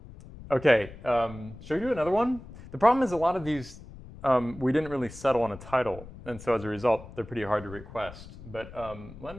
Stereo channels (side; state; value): left; noise; rumble, 16 dB below the sound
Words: should we do another one? The problem is a lot of these, we didn't really settle on a title, and so as a result, they're pretty hard to request. But let